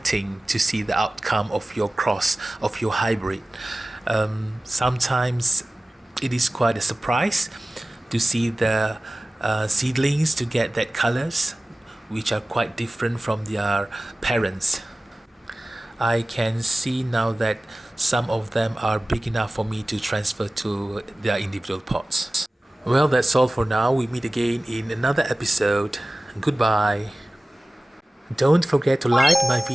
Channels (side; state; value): both; normal; correlation 0.97